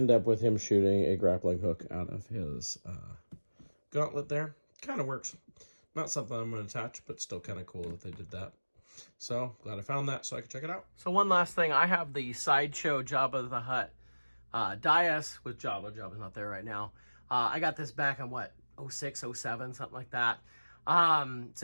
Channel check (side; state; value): both; inverted; correlation -1.00